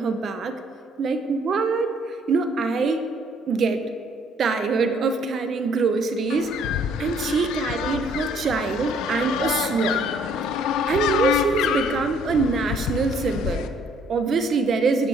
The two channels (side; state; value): both; normal; correlation 0.62